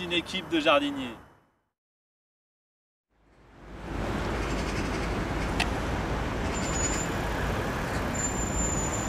équipe de jardiniers.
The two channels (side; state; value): both; identical; correlation 1.00